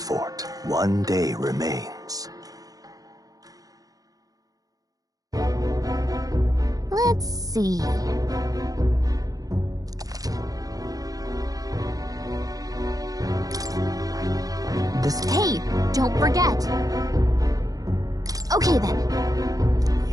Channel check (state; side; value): late; left; 0.18 ms